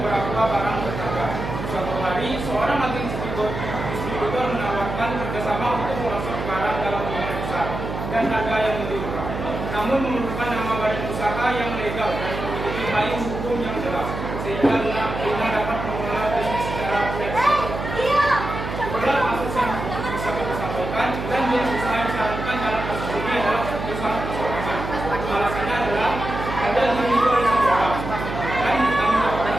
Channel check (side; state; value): right; noise; hum, 6 dB below the sound